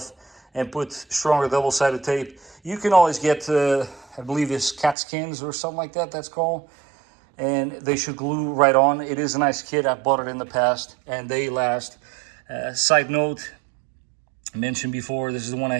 and put stronger double-sided tape, you can always get, I believe it's TUFSKINZ or something like that, that's called. And they should glue right on. It is a nice kit. I've bought it in the past, and they last. Side note, I mentioned before, this is the one I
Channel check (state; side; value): drops out; left; at 5.0 s